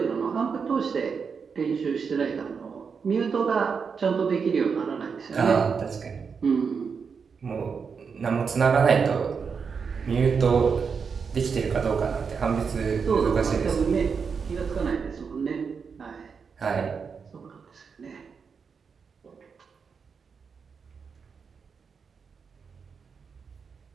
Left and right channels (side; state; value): left; quieter; 5.8 dB